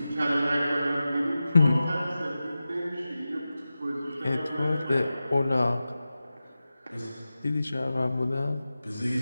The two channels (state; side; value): inverted; both; correlation -0.94